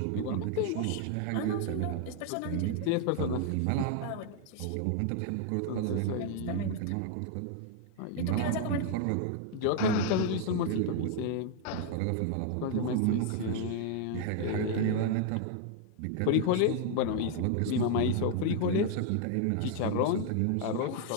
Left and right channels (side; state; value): both; different; correlation 0.00